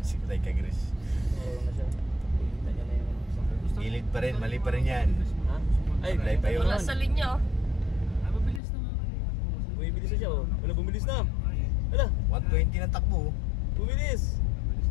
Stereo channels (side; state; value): right; drops out; at 8.6 s